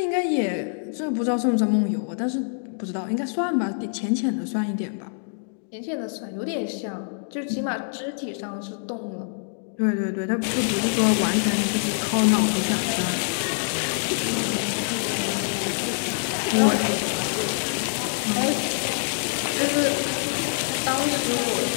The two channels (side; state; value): right; silent; digital silence